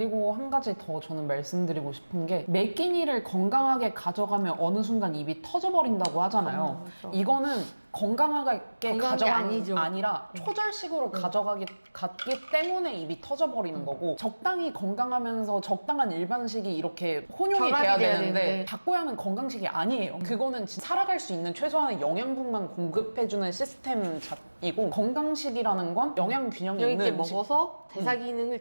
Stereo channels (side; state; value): both; inverted; correlation -1.00